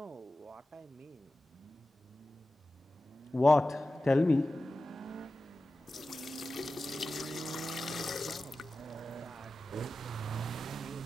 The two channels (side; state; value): both; normal; correlation 0.94